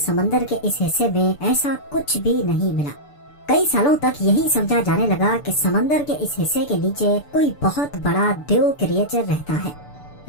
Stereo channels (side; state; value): right; late; 6.9 ms